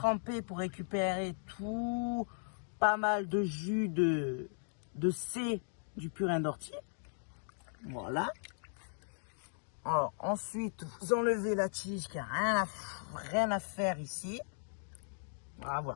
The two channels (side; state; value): right; silent; digital silence